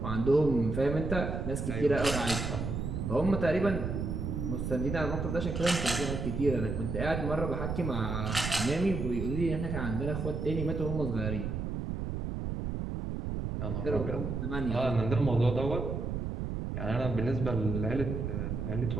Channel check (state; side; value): noise; right; rumble, 3 dB below the sound